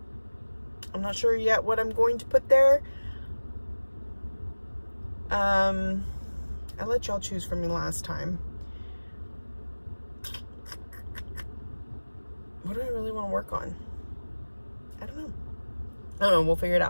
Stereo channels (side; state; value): both; inverted; correlation -1.00